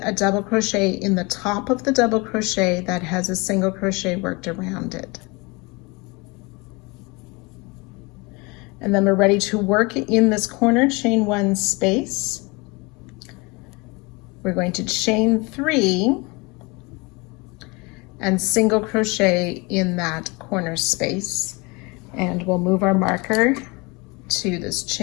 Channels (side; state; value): right; quieter; 26.9 dB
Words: a double crochet in the top of the double crochet that has a single crochet worked around it. And then we're ready to work in this corner chain 1 space. We're going to chain 3 and single crochet in that corner space, and we'll move our marker to this